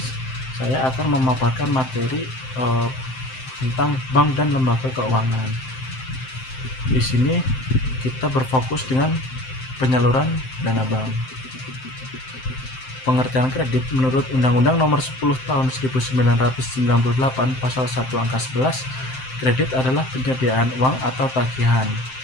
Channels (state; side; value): late; right; 7.7 ms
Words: saya akan memaparkan materi tentang bank dan lembaga keuangan. Di sini kita berfokus dengan penyaluran dana bank. Pengertian kredit menurut Undang-Undang Nomor 10 Tahun 1998 Pasal 1 Angka 11, kredit adalah penyediaan uang atau tagihan